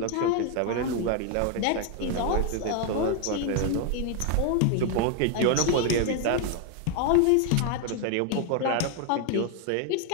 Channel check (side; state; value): both; different; correlation 0.00